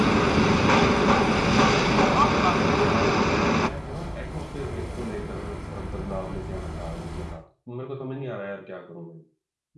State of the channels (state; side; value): identical; both; correlation 1.00